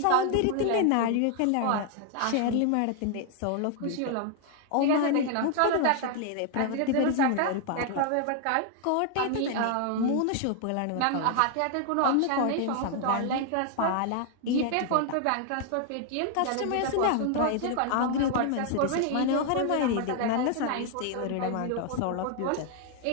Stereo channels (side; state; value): both; different; correlation 0.00